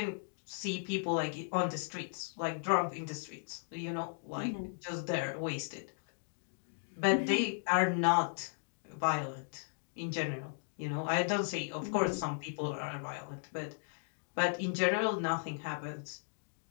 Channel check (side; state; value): right; silent; digital silence